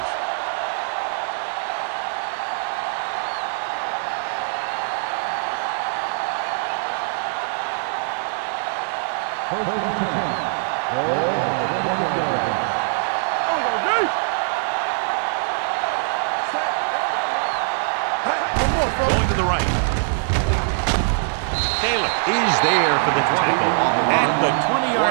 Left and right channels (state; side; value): silent; left; digital silence